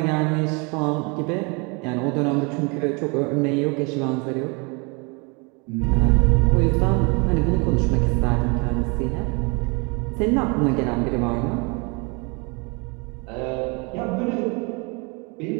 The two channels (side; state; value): left; quieter; 31.0 dB